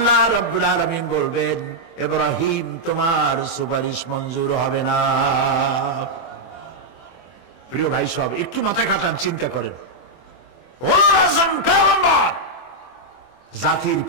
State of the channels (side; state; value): right; late; 24 ms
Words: রাব্বুল আলামিন বলবেন, ইব্রাহিম তোমার সুপারিশ মঞ্জুর হবে না। প্রিয় ভাই সব, একটু মাথা খাটান, চিন্তা করেন। উলুল আযম পয়গম্বর, জাতির